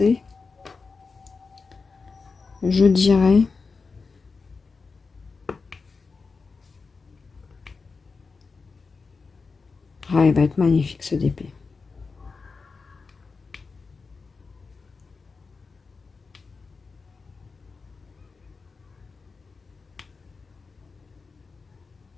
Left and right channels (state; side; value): quieter; right; 4.5 dB